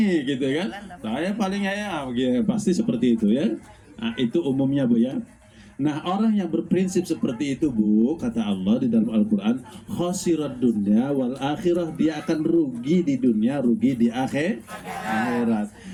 gitu kan. Saya paling pasti seperti itu ya. Itu umumnya, Bu ya. Nah, orang yang berprinsip seperti itu, Bu, kata Allah di dalam Al-Quran, khasirat dunya wal akhirah, dia akan rugi di dunia, rugi di akhirat.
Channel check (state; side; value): identical; both; correlation 1.00